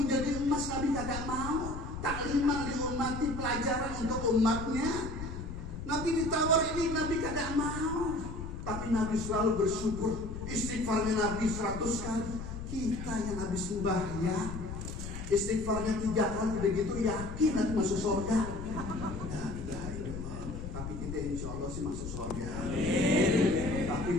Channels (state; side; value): noise; left; rumble, 8 dB below the sound